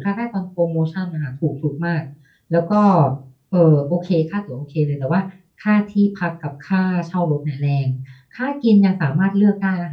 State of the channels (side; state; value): both; identical; correlation 1.00